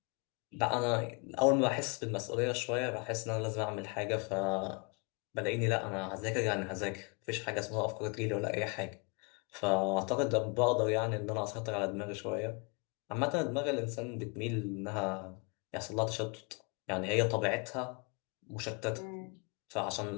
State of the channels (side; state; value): right; quieter; 32.3 dB